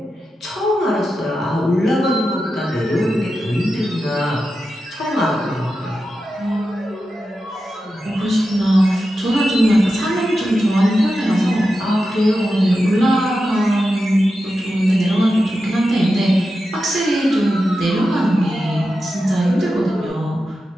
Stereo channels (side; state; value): both; normal; correlation 0.90